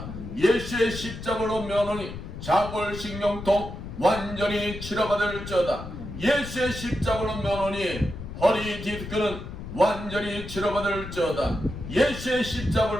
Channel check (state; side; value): noise; left; rumble, 9 dB below the sound